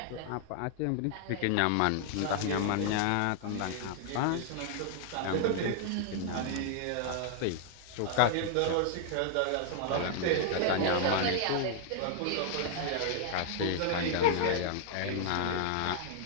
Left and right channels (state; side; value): different; both; correlation 0.00